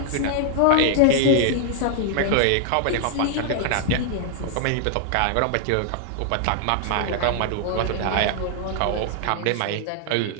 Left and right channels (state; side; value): different; both; correlation 0.00